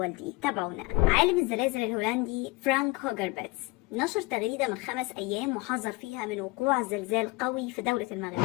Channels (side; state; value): right; quieter; 23.7 dB